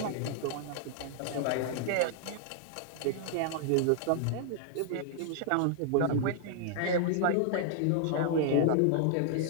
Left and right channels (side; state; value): both; different; correlation 0.00